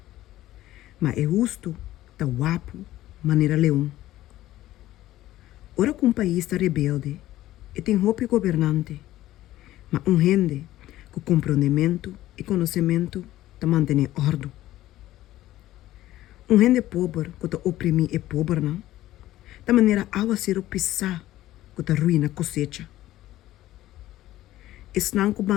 Mas é justo ta guapo, maneira leão. Ora que país está rebelde, e tem roupa governante, mas gente com compreendimento e conhecimento ta mantém ordem. Gente pobre que ta oprimir é pobre, não? Da maneira awa ser pisar que ta ruína cosecha. Esnan que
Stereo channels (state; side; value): quieter; right; 14.9 dB